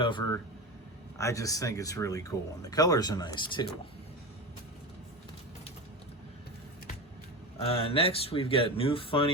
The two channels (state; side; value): normal; both; correlation 0.24